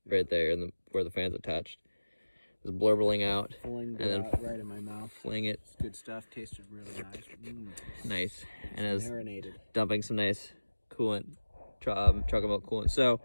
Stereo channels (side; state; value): both; inverted; correlation -1.00